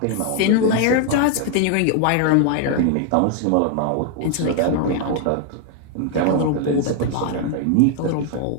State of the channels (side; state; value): both; different; correlation 0.00